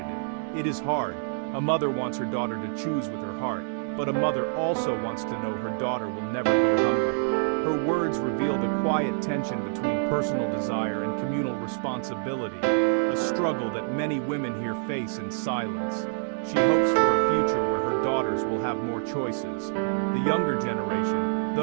it. It is hard. A mother wants her daughter to choose with her heart, but a mother also wants to know her daughter will never go hungry." Her words reveal the quiet tension between personal desire and communal responsibility, a struggle that many women here face in silence. She hopes for a future where her daughters will have more choices. The younger generation,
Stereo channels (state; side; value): silent; left; 60 dB below the other